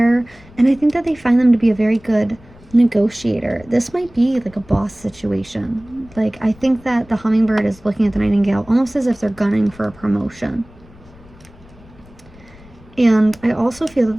and I think that they find them to be a very good negotiator. This might be like a boss situation. Like, I think that the hummingbird is looking at the nightingale almost as if they're gunning for a promotion. And I also feel that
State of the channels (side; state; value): left; noise; rumble, 24 dB below the sound